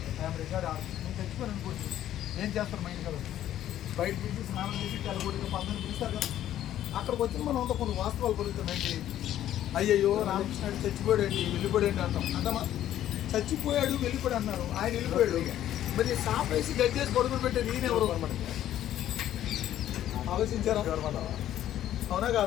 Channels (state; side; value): quieter; right; 12.1 dB